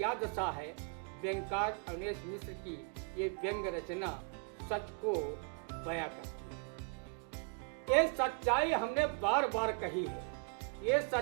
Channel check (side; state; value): left; quieter; 39.3 dB